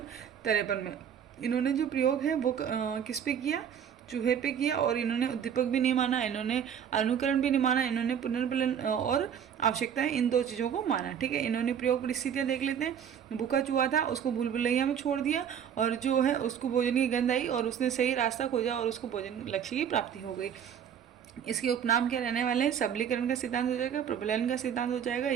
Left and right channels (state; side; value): quieter; left; 8.4 dB